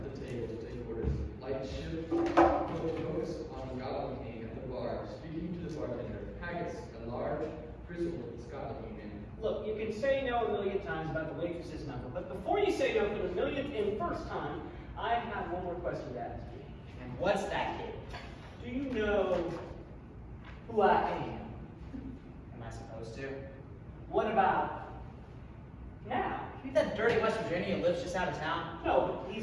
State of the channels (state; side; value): identical; both; correlation 1.00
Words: the table to take orders. Light shift, focus on the Scotland king at the bar, speaking to the bartender. Haggis, a large, grizzled Scotland king man. Look, you can say no a million times about the waitress's number, but before you say no for the millionth and first time, I have one more question to ask you. And what's that, kid? Do you know who I am? Am I supposed to? What about now? You that dirty West Virginia who lives just out of town? No, but